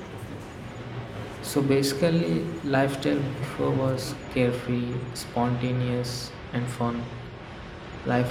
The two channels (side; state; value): both; identical; correlation 1.00